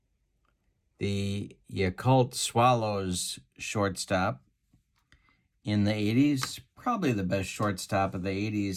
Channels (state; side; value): identical; both; correlation 1.00